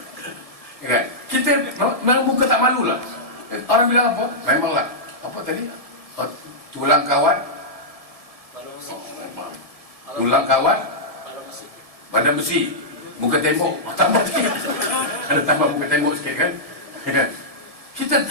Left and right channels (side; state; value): left; late; 1.7 ms